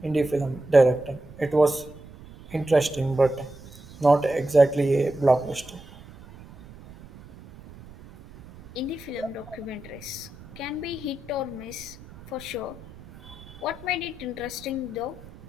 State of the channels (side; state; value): right; noise; rumble, 19 dB below the sound